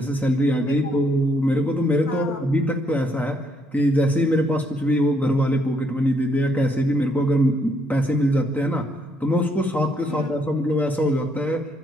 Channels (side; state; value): both; normal; correlation 0.72